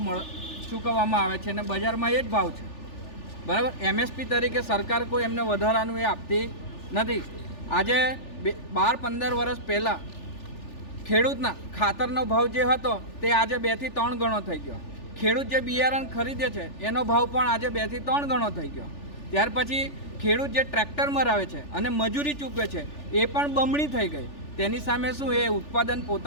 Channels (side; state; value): right; late; 3.4 ms